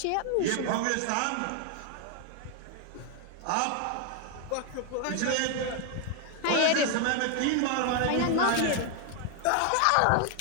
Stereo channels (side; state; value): both; different; correlation 0.00